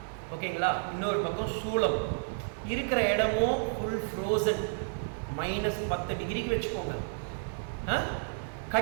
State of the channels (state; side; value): silent; left; 57 dB below the other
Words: ஓகேங்களா, இன்னொரு பக்கம் சூளம், இருக்கிற இடமும் ஃபுல் ஃப்ரோசன், -10 டிகிரிக்கு வச்சுக்கோங்க.